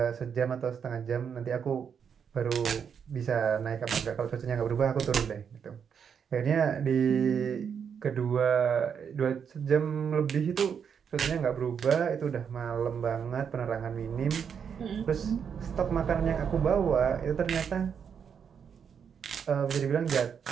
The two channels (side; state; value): left; quieter; 7.2 dB